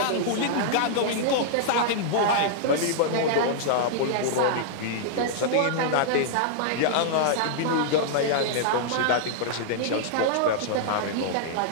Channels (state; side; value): different; both; correlation -0.01